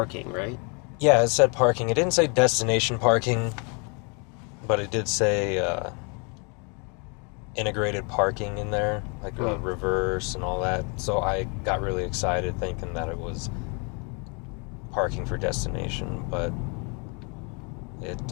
right? Yeah, it said parking. It didn't say destination parking, but it did say integrated parking in there, like reverse and all that. So I got really excited thinking that it was parking for destination, but it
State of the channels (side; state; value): right; quieter; 34.6 dB